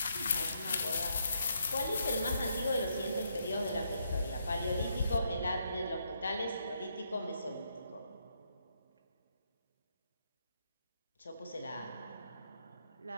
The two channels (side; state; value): both; inverted; correlation -0.77